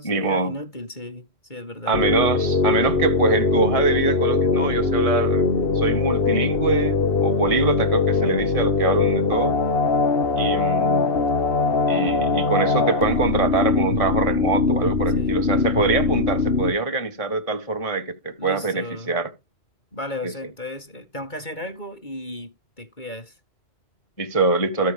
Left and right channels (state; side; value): late; right; 2.2 ms